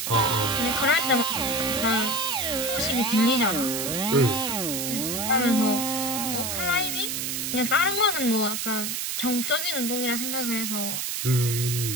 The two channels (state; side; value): noise; right; hiss, 2 dB below the sound